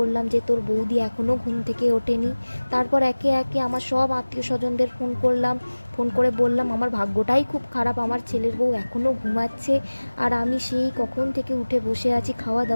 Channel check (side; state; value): both; inverted; correlation -1.00